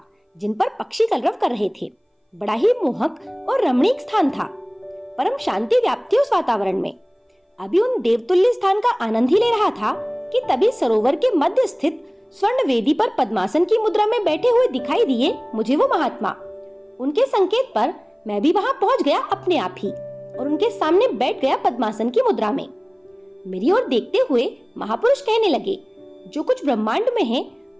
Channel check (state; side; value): identical; both; correlation 1.00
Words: जिन पर पक्षी कलरव कर रहे थे। बड़ा ही मोहक और रमणीक स्थान था। परम शांति व्याप्ति उस वातावरण में। अभी उन देवतुल्य स्थान का आनंद ही ले रहा था कि तभी सरोवर के मध्य स्थित स्वर्ण वेदी पर पद्मासन की मुद्रा में बैठे हुए दिखाई दिए मुझे वो महात्मा। उनके संकेत पर मैं भी वहां पहुंच गया अपने आप ही और उनके सामने बैठ गया पद्मासन की मुद्रा में। मेरी ओर देखते हुए महापुरुष कहने लगे, जो कुछ ब्रह्मांड में है